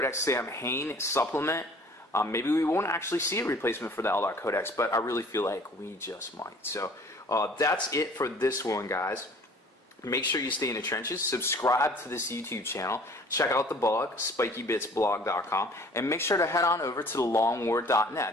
Sam Hain supplement. Maybe we won't actually see a replacement for the Eldar Codex, but I really feel like we just might. So that's it for this one, guys. Make sure you stay in the trenches. Subscribe to this YouTube channel. Check out the blog, spikybitsblog.com, and make sure to head on over to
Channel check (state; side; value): normal; both; correlation 0.51